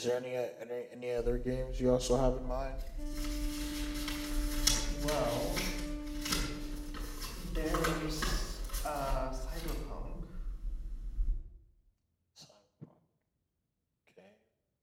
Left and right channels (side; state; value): both; identical; correlation 1.00